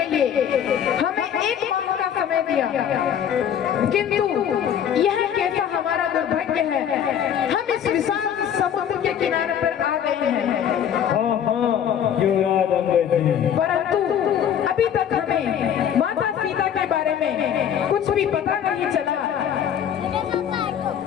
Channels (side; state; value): right; quieter; 9.0 dB